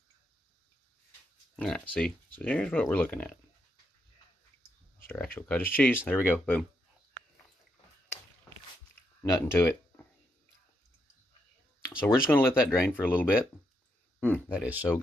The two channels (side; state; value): both; normal; correlation 0.80